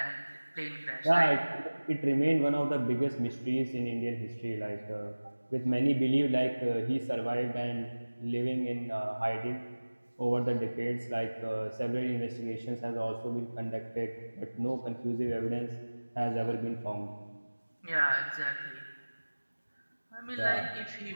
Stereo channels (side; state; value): both; inverted; correlation -1.00